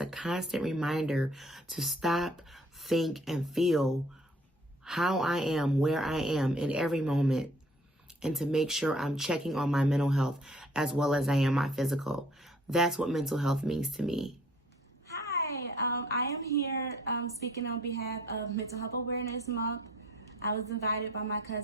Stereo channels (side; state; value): both; normal; correlation 0.57